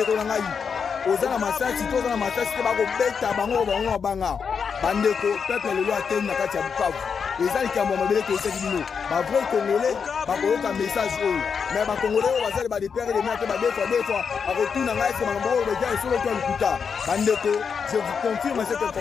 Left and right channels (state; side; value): quieter; right; 6.2 dB